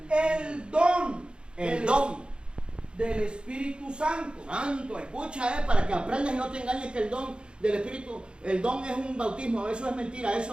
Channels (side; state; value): left; late; 0.053 ms